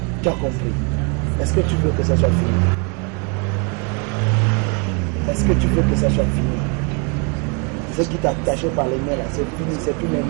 Tu as compris. Est-ce que tu veux que ça soit fini? Est-ce que tu veux que ça soit fini? Ce qui t'a attaché par les mains là, c'est fini. C'est plus les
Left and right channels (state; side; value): quieter; left; 34.3 dB